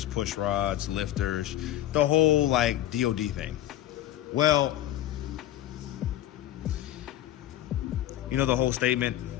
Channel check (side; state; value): right; quieter; 13.0 dB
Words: push rods, lifters, the whole like DOD thing. Well, you know the whole statement,